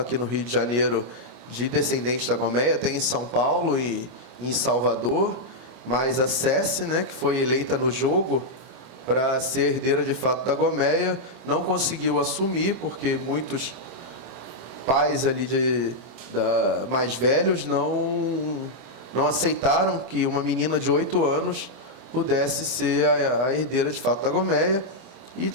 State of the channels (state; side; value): late; left; 25 ms